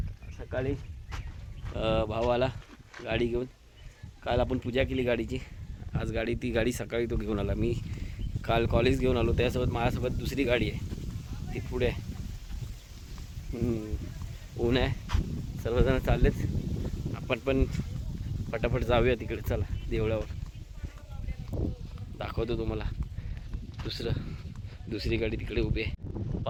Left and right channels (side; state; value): both; identical; correlation 1.00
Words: सकाळी भाऊ आला गाडी घेऊन. काल आपण पूजा केली गाडीची. आज ती गाडी सकाळी तो घेऊन आला. मी काल कॉलेज घेऊन आलो, त्यासोबत माझ्यासोबत दुसरी गाडी आहे, ती पुढे आहे. ऊन आहे, सर्वजण चाललेत. आपण पण फटाफट जाऊया तिकडे. चला देवळावर दाखवतो तुम्हाला. दुसरी गाडी तिकडे उभी आहे.